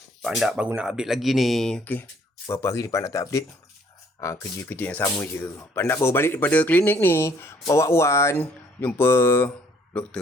Pak Andak baru nak update lagi ni. Okey. Berapa hari ni Pak Andak tak update? Kerja-kerja yang sama je. Pak Andak baru balik daripada klinik ni. Bawa Wan jumpa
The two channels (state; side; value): normal; both; correlation 0.62